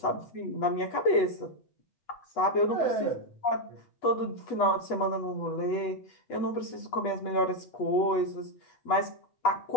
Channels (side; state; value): right; late; 8.2 ms